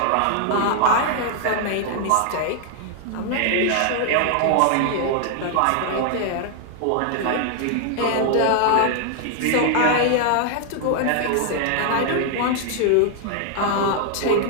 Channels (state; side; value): different; both; correlation 0.00